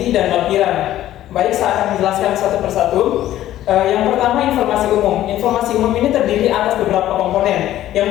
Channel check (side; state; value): right; quieter; 13.3 dB